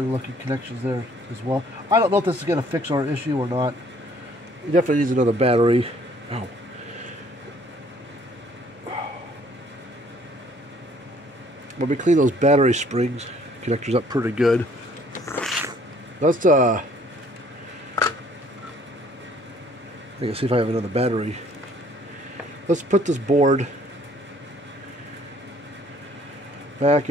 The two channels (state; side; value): normal; both; correlation 0.59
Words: looking connections there as well. I don't know if this is going to fix our issue or not. It definitely needs another battery. Oh. But we clean those battery springs connectors up pretty good. Let's I can see if I have another battery. Let's put this board back